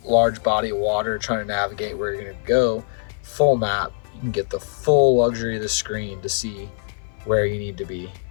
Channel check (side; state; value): right; silent; 56 dB below the other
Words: large body of water trying to navigate where you're going to go, full map, you can get the full luxury of the screen to see where you need to be